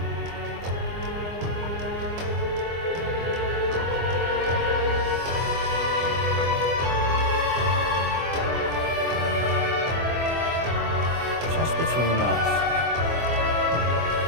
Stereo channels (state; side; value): late; left; 24 ms